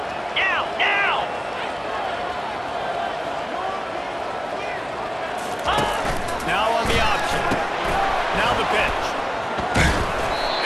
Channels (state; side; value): identical; both; correlation 1.00